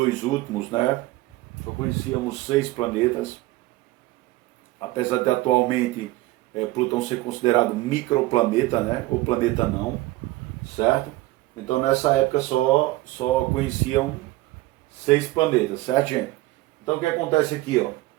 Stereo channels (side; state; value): left; quieter; 18.6 dB